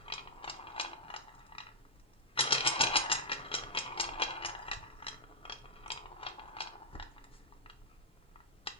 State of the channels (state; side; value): normal; both; correlation -0.08